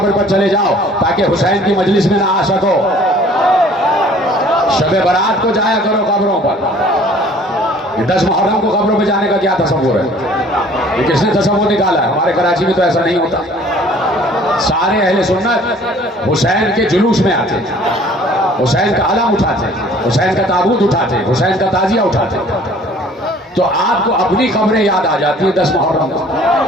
پر چلے جاؤ تاکہ حسین کی مجلس میں نہ آ سکو. شب برات کو جایا کرو قبروں پر. 10 محرم کو قبروں پہ جانے کا کیا تصور ہے؟ یہ کس نے تصور نکالا ہے؟ ہمارے کراچی میں تو ایسا نہیں ہوتا. سارے اہل سنت حسین کے جلوس میں آتے, حسین کا علم اٹھاتے, حسین کا تابوت اٹھاتے, حسین کا تعزیہ اٹھاتے. تو آپ کو اپنی قبریں یاد آ جاتی ہیں 10 محرم کو,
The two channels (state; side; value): normal; both; correlation 0.53